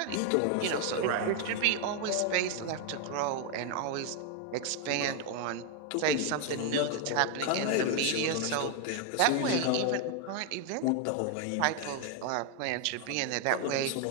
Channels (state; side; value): different; both; correlation 0.00